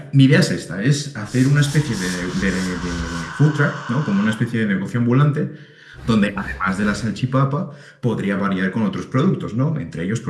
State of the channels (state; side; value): identical; both; correlation 1.00